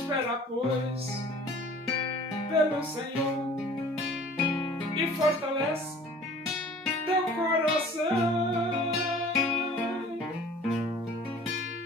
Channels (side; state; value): both; normal; correlation 0.48